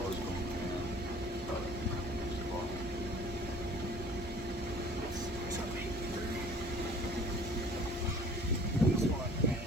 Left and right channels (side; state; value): both; normal; correlation 0.50